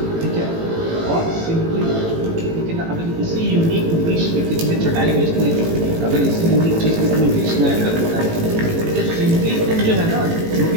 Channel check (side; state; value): left; late; 18 ms